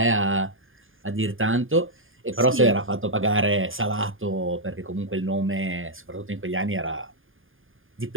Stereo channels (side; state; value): left; late; 0.59 ms